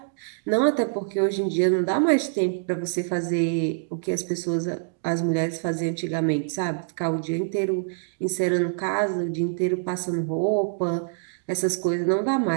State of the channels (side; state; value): left; silent; digital silence